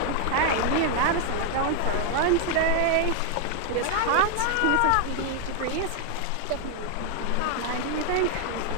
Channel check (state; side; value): different; both; correlation 0.00